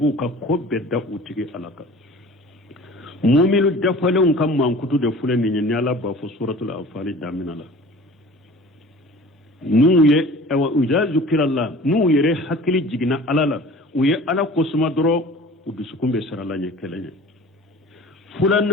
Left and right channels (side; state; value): both; normal; correlation 0.43